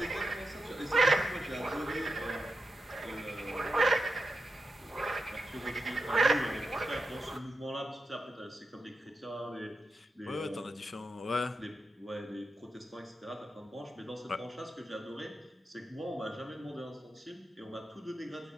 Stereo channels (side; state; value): both; normal; correlation 0.88